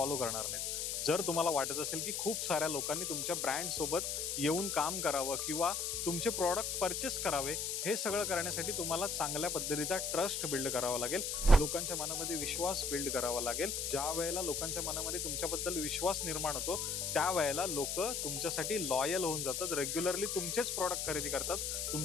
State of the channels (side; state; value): left; noise; hiss, 1 dB below the sound